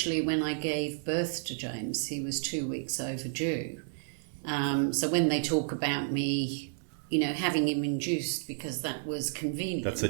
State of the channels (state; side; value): silent; left; 57 dB below the other